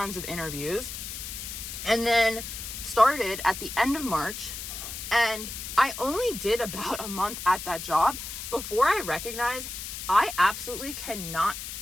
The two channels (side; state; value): left; noise; hiss, 8 dB below the sound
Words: of interviews, and then started at the end of March. And I only did about a month at that job before I recognized I absolutely cannot